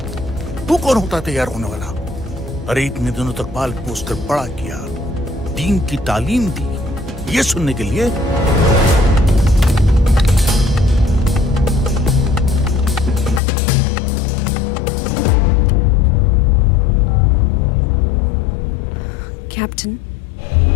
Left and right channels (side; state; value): right; drops out; at 13.4 s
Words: तू कौन होता है तैयार होने वाला? अरे इतने दिनों तक बाल पोस्ट कर बड़ा किया, दीन की तालीम दी, ये सुनने के लिए। कैप्टन,